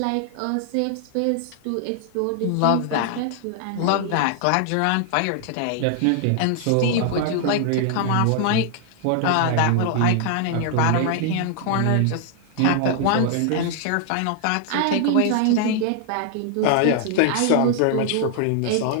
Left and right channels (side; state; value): both; different; correlation 0.00